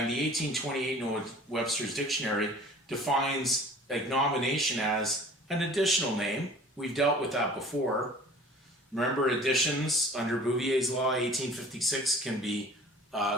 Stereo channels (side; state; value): both; normal; correlation 0.46